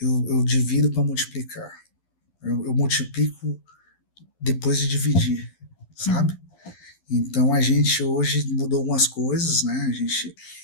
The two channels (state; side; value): late; right; 11 ms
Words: Eu divido para multiplicar. Eu multiplico depois de dividir, sabe? uhum. Então a gente hoje mudou algumas coisas, né? A gente